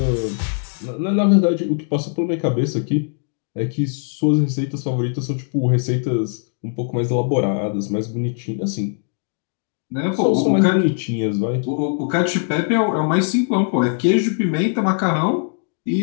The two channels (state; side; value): silent; right; 65 dB below the other